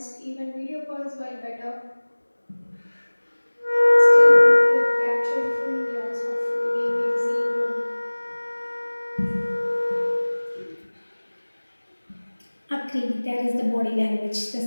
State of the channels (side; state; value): both; inverted; correlation -1.00